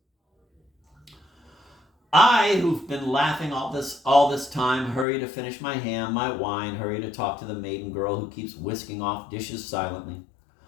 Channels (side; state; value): right; drops out; at 5.1 s